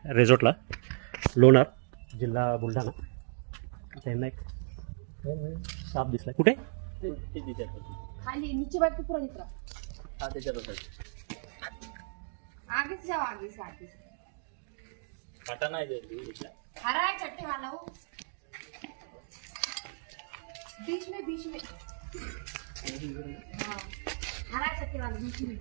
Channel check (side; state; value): left; silent; digital silence